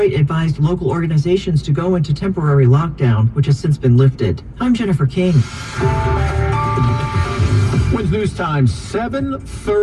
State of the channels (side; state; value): both; identical; correlation 1.00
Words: advised local organizations to go into temporary lockdown, which has since been lifted. I'm Jennifer King. Wins News Time,